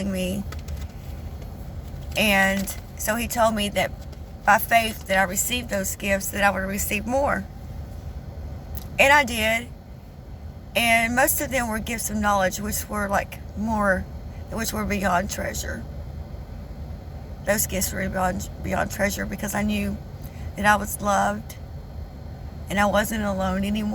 me. And so he told me that by faith that I received those gifts, that I would receive more. And I did. And most of them were gifts of knowledge, which were which were beyond treasure. Those gifts were beyond treasure because I knew that I was loved and I wasn't alone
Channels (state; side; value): identical; both; correlation 1.00